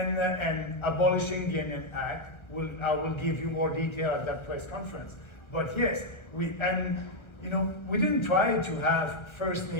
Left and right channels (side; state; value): right; late; 1.4 ms